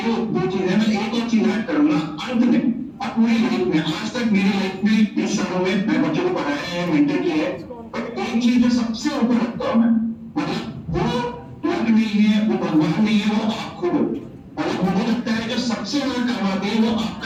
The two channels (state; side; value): identical; both; correlation 1.00